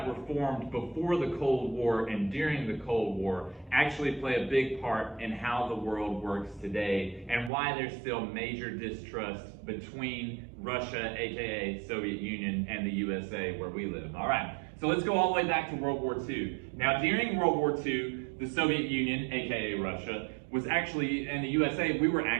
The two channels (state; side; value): drops out; left; at 7.5 s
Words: were formed before the Cold War and during the Cold War actually play a big part in how the world works today and why there's still major distrust between Russia, aka Soviet Union, and the USA where we live. All right, so let's go all the way back to World War II. Now, during World War II, the Soviet Union, aka Russia, was actually, and the USA, we were